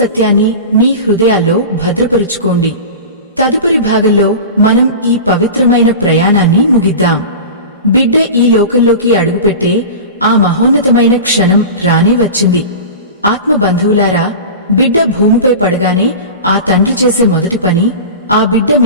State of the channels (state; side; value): inverted; both; correlation -0.31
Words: మీ హృదయాల్లో భద్రపరుచుకోండి. తదుపరి భాగంలో మనం ఈ పవిత్రమైన ప్రయాణాన్ని ముగిద్దాం. బిడ్డ ఈ లోకంలోకి అడుగుపెట్టే ఆ మహోన్నతమైన క్షణం రానే వచ్చింది. ఆత్మబంధువులారా, బిడ్డ భూమిపై పడగానే ఆ తండ్రి చేసే మొదటి పని ఆ బిడ్డ